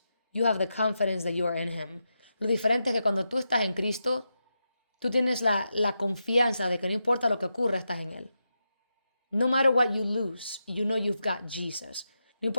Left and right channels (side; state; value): both; inverted; correlation -0.87